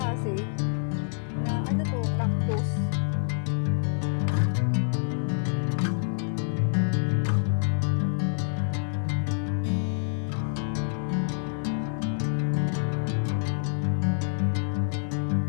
na ano to, cactus.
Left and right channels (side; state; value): right; silent; 57 dB below the other